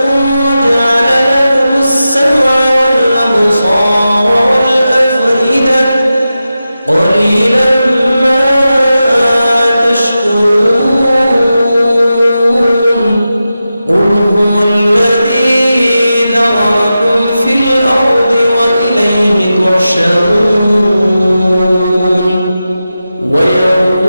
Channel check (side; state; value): both; inverted; correlation -0.92